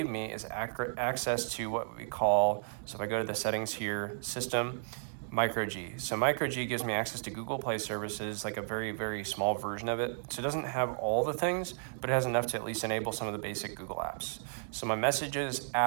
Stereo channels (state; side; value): silent; left; 55 dB below the other